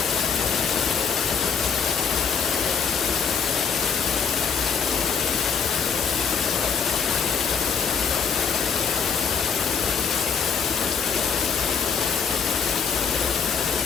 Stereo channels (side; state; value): right; quieter; 6.3 dB